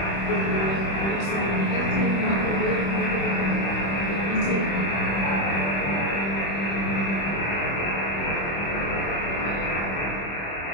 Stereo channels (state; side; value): late; right; 26 ms